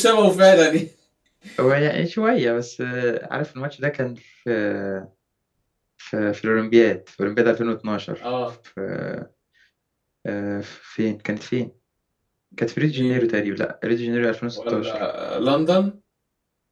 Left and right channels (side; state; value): both; identical; correlation 1.00